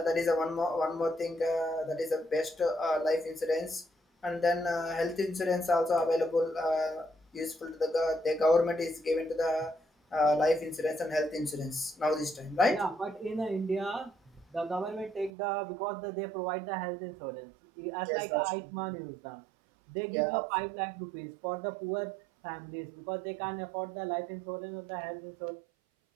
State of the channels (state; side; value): drops out; left; at 15.3 s